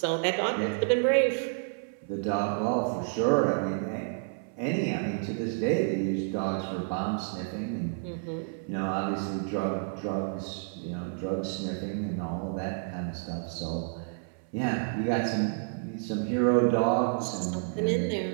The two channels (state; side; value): silent; left; 58 dB below the other